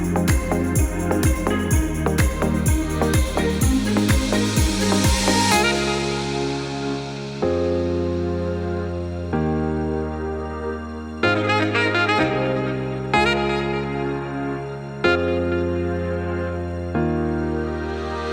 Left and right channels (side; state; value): both; identical; correlation 1.00